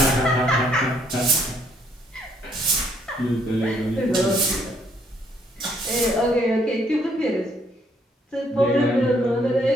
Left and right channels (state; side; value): normal; both; correlation 0.68